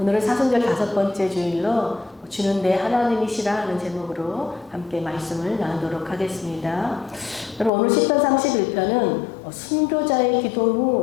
사순절 5번째 주일로 주는 내 하나님이시라 하는 제목으로 함께 말씀을 나누도록 하겠습니다. 여러분, 오늘 시편 31편은 순교자의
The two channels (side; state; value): right; drops out; at 7.7 s